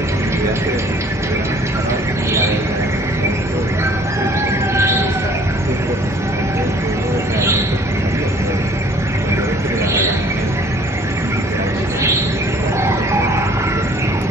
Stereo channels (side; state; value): both; normal; correlation 0.55